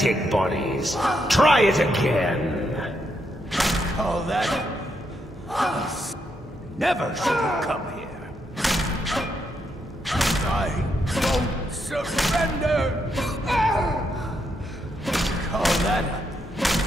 bodies. Try it again. Call that... Never should have come here. I won't surrender. Call that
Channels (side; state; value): both; normal; correlation 0.79